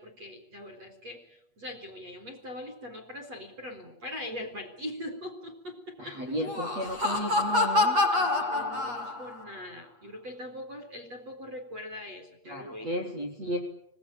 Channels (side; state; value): left; late; 8.3 ms